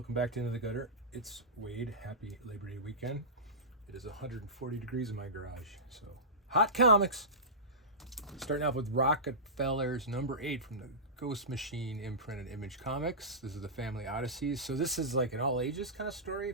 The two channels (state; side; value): normal; both; correlation -0.18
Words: back to Into the Gutter. It's Wade. Happy Labor Day weekend. It is 140 degrees in my garage, so hot comics. Starting off with Rockefellers number 8 from the Ghost Machine imprinted Image Comics. This is the Family Odysseys. So this is like an all ages kind of story,